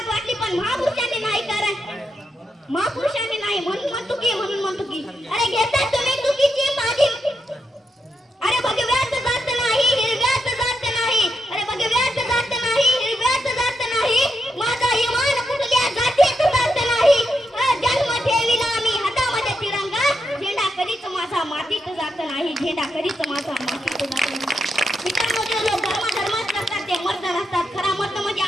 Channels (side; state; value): both; normal; correlation 0.83